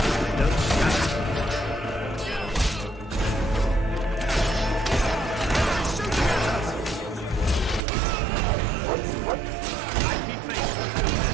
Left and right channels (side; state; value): left; drops out; at 7.8 s